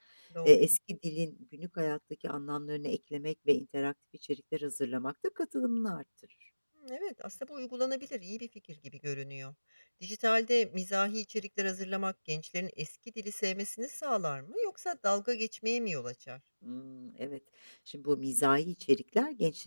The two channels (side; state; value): both; inverted; correlation -1.00